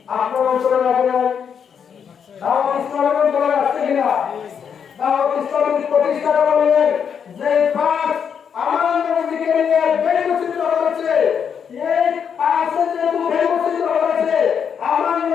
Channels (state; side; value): quieter; right; 7.3 dB